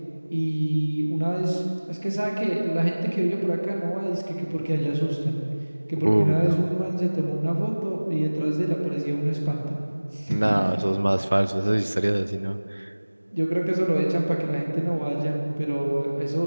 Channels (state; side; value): inverted; both; correlation -1.00